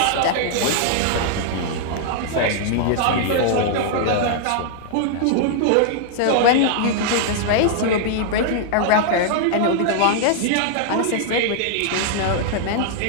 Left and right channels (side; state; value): both; different; correlation -0.01